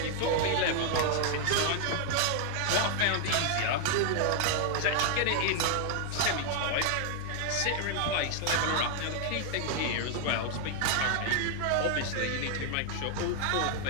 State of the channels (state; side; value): different; both; correlation 0.00